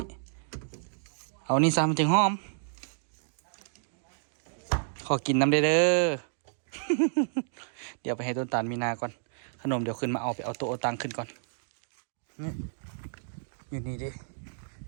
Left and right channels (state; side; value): silent; left; digital silence